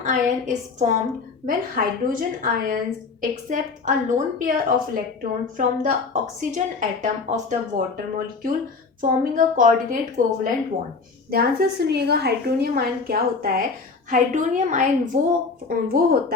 is formed when hydrogen ions accept a lone pair of electron from the oxygen atom of the water molecule forming a coordinate covalent bond. ध्यान से सुनिएगा, हाइड्रोनियम आयन क्या होता है। हाइड्रोनियम आयन वो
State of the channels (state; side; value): quieter; right; 4.5 dB